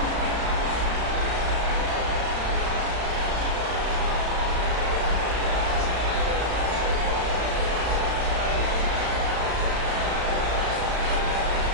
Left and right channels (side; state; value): left; late; 35 ms